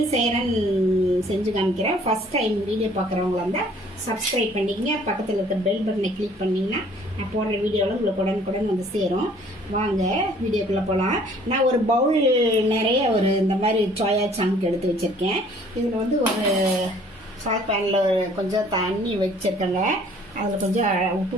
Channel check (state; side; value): normal; both; correlation 0.57